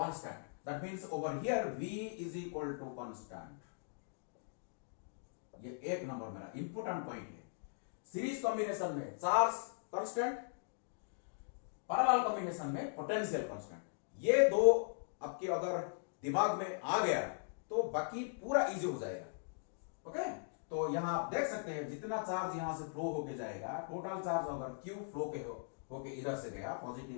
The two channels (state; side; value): silent; right; digital silence